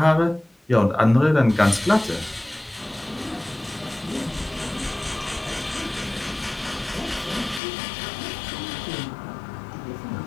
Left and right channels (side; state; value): right; drops out; at 7.6 s